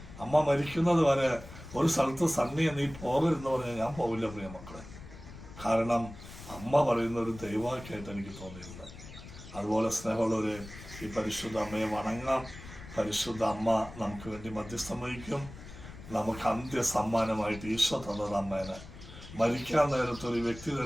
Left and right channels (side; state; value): left; noise; rumble, 15 dB below the sound